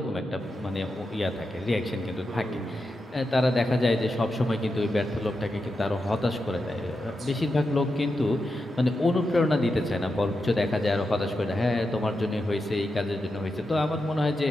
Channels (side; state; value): both; normal; correlation 0.88